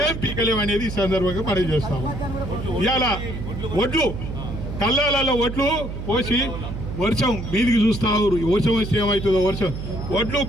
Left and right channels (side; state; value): right; noise; hum, 7 dB below the sound